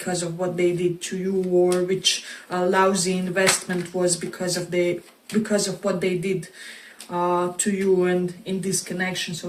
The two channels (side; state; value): both; identical; correlation 1.00